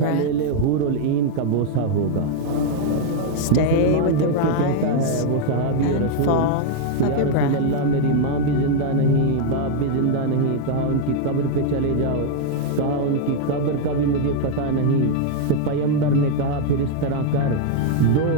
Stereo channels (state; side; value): different; both; correlation 0.00